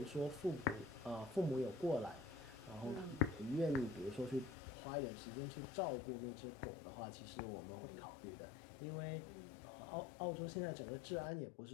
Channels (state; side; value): drops out; right; at 4.5 s